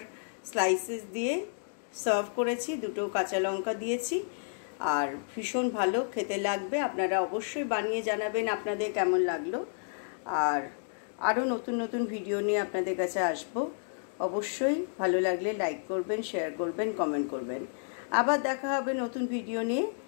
স্লাইসেস দিয়ে সার্ভ করেছি, দুটো কাঁচা লঙ্কা দিয়েছি, আর ভীষণ ভালো খেতে লাগবে। আপনারা অবশ্যই বানিয়ে জানাবেন আপনাদের কেমন লাগলো। আর আরও নতুন নতুন ভিডিও নিয়ে আপনাদের কাছে আসবো। অবশ্যই ভালো লাগলে লাইক করবেন, শেয়ার করবেন, কমেন্ট করবেন। আবার দেখা হবে নতুন ভিডিও নিয়ে।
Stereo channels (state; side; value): silent; right; digital silence